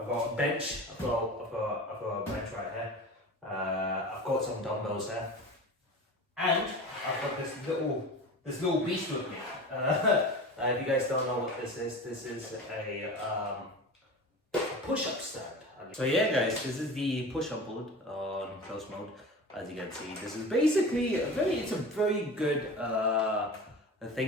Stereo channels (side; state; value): both; normal; correlation 0.34